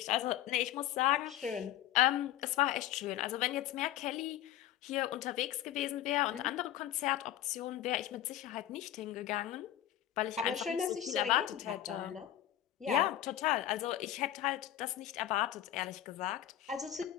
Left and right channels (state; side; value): quieter; right; 12.6 dB